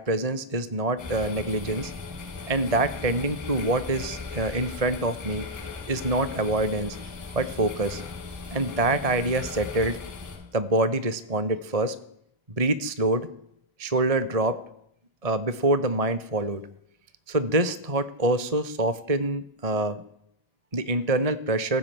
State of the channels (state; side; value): late; left; 1.7 ms